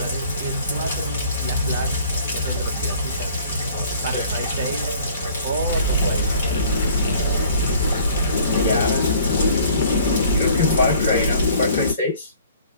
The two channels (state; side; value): inverted; both; correlation -0.54